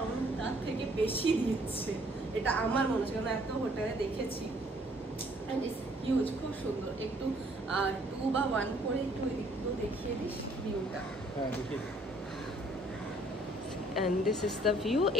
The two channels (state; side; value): normal; both; correlation 0.61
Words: তার থেকে বেশি দিচ্ছে, এটা আমার মনে হচ্ছে, কারণ এত হোটেলে দেখেছি। অ্যান্ড ইটস হিউজ, খুব সুন্দর। একটু 2 বা 1 করে একটু একটু দেখিয়ে দিস ভিউটা। হ্যাঁ, দেখিয়ে দিই। And this is the view.